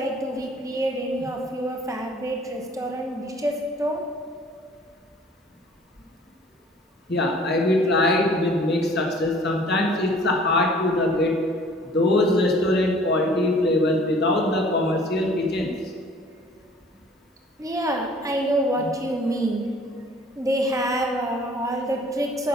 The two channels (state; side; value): normal; both; correlation 0.53